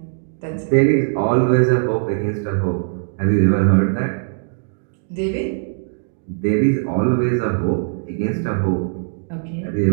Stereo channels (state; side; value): silent; left; digital silence